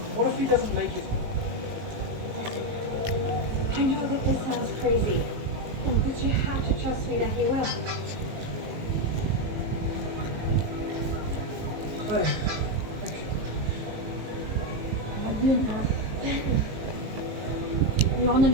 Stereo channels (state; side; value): late; left; 19 ms